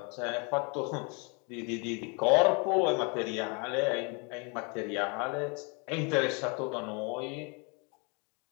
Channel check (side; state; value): right; quieter; 33.6 dB